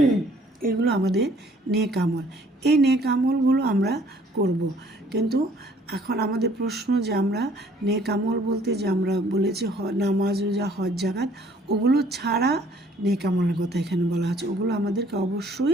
এগুলো আমাদের নেক আমল। এই নেক আমলগুলো আমরা করব। কিন্তু এখন আমাদের প্রশ্ন যে আমরা নেক আমল বলতে যে আমরা বলেছি নামাজ, রোজা, হজ, জাকাত, ওগুলো ছাড়া নেক আমলের কথা এখানে বলা হচ্ছে, ওগুলো আমাদেরকে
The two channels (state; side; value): normal; both; correlation 0.59